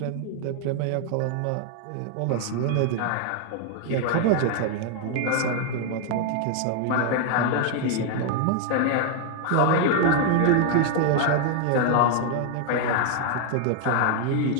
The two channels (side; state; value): both; different; correlation 0.00